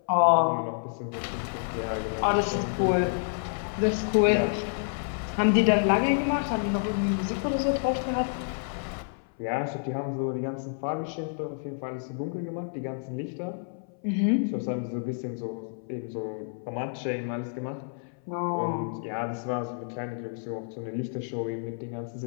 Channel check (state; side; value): silent; right; 59 dB below the other